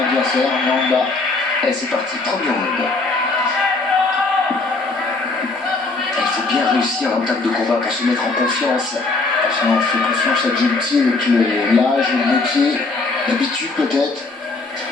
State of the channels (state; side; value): quieter; right; 3.6 dB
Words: adversaire, Mwamba. Et c'est parti, premier round. Il faut bien réussir l'entame de combat pour se mettre en confiance. Ça, on fait confiance à Djelti avec l'âge, le métier, l'habitude peut-être.